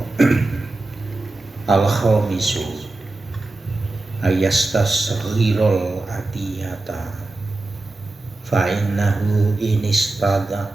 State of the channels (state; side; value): quieter; left; 3.1 dB